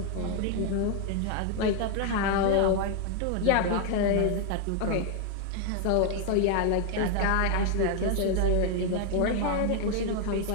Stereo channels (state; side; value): different; both; correlation 0.00